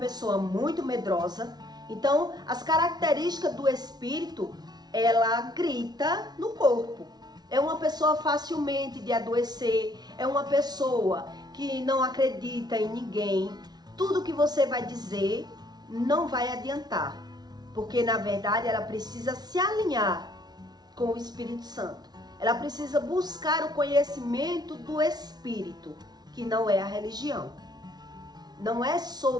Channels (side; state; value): left; late; 0.19 ms